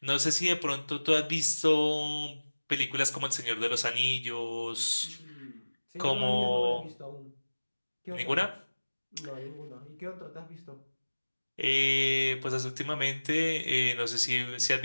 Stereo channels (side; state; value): both; inverted; correlation -1.00